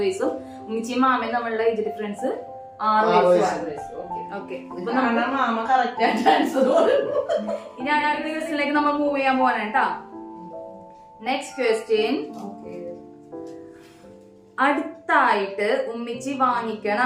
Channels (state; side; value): identical; both; correlation 1.00